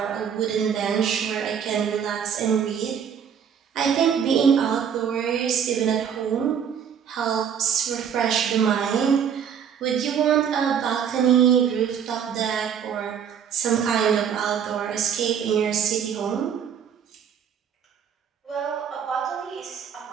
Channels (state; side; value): quieter; left; 7.9 dB